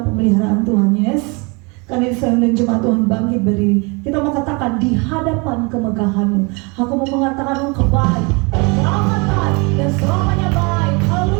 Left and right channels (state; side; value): quieter; left; 29.8 dB